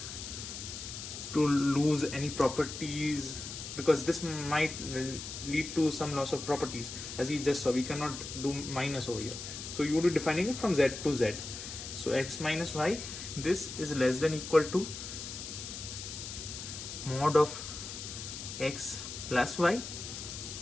to lose any properties because this might lead to some loss of properties, as we just saw. We cannot do minus over here, so you would be defining it from z to z. So x minus y, this is less than equal to mod of x plus y,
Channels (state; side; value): noise; left; hiss, 8 dB below the sound